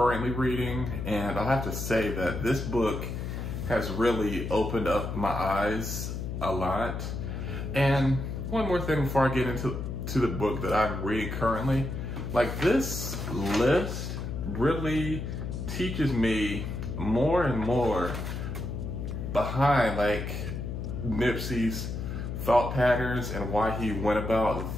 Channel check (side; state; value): left; noise; hum, 5 dB below the sound